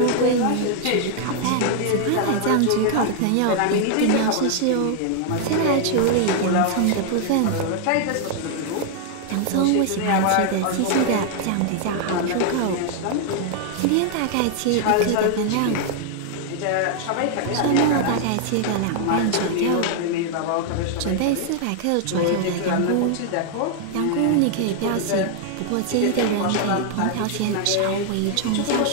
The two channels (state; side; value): different; both; correlation 0.00